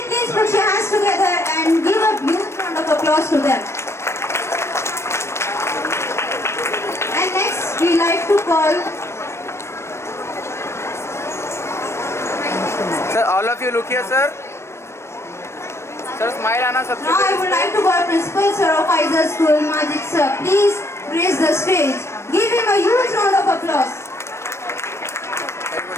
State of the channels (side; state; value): right; late; 0.13 ms